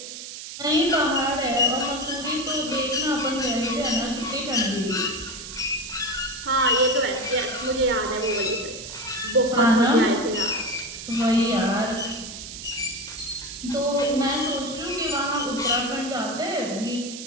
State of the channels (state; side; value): noise; right; hiss, 10 dB below the sound